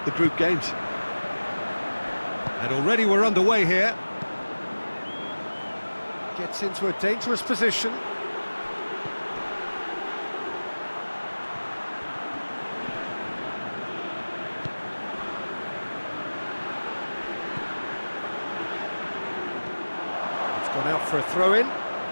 group games. And already we're underway here. Gets into a dangerous position. Gone out for a throw-in.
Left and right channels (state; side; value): inverted; both; correlation -1.00